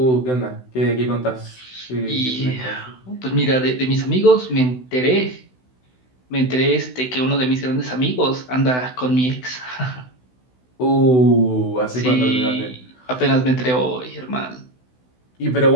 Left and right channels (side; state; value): right; late; 16 ms